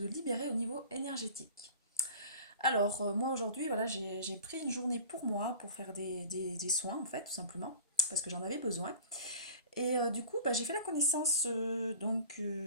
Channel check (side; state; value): both; inverted; correlation -0.42